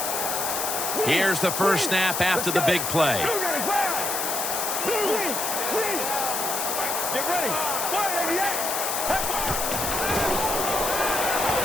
Here's the first snap after the big play. Get ready.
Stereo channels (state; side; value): noise; left; hiss, 1 dB below the sound